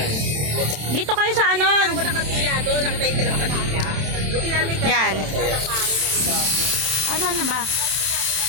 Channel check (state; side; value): late; left; 27 ms